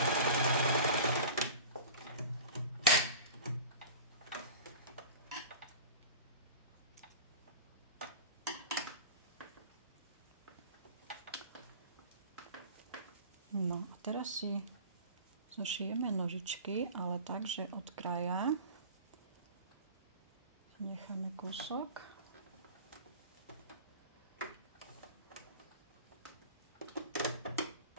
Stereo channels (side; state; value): both; inverted; correlation -0.37